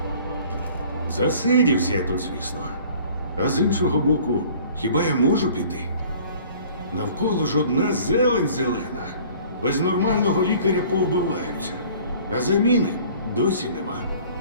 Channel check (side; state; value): both; inverted; correlation -0.50